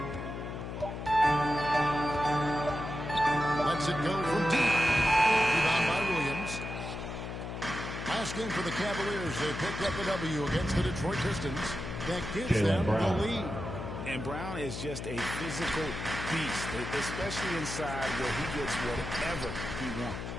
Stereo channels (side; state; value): left; noise; hum, 7 dB below the sound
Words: Lets it go from deep. Rebound by Williams. Last game for the Cavaliers. They picked up the W against the Detroit Pistons. That gives them the lead. And Brown is just a physical beast, especially inside where he gets whatever he wants.